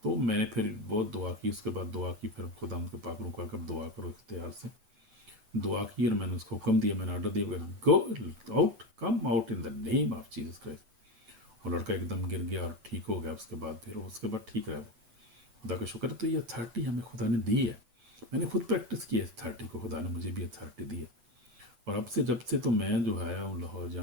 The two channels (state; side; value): late; left; 8.0 ms